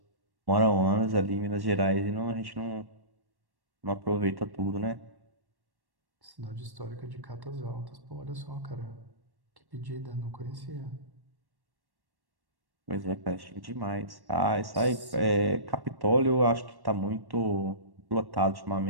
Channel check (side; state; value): left; late; 1.1 ms